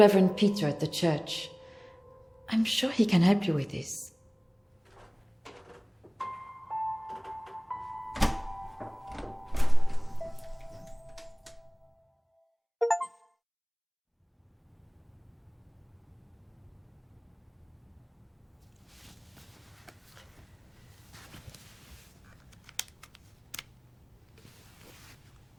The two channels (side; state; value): both; identical; correlation 1.00